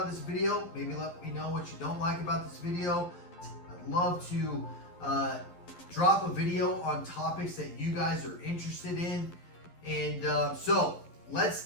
this video. Maybe let me know what you don't like about this video. I'd love to drop a video on topics that you guys are interested in. And so let's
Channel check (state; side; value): late; right; 11 ms